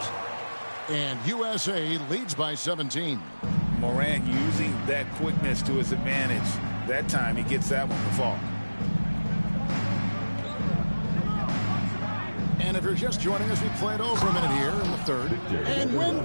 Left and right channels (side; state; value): both; inverted; correlation -1.00